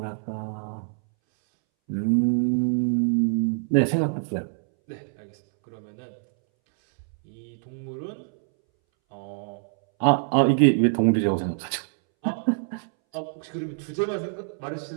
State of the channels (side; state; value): left; silent; 61 dB below the other